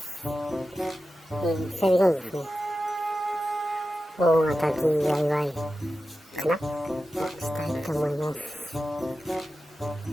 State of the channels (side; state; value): both; normal; correlation 0.93